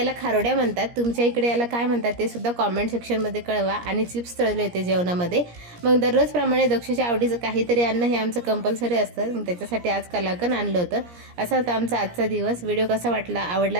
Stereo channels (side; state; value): left; late; 17 ms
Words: खारोड्या म्हणतात, तुमच्या इकडे याला काय म्हणतात ते सुद्धा कॉमेंट सेक्शनमध्ये कळवा. आणि चिप्स तळले होते जेवणामध्ये. मग दररोजप्रमाणे दक्षच्या आवडीचं काहीतरी अन्न हे आमचं कंपल्सरी असतं. मग त्याच्यासाठी आज कलाकंद आणलं होतं. असा होता आमचा आजचा दिवस. व्हिडिओ कसा वाटला, आवडला